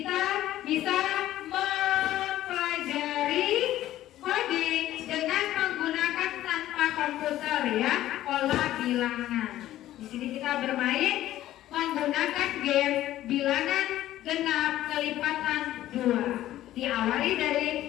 bisa mempelajari coding dengan menggunakan tanpa komputer ya, pola bilangan. Di sini kita bermain menggunakan game bilangan genap kelipatan 2. Diawali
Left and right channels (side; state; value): right; quieter; 13.8 dB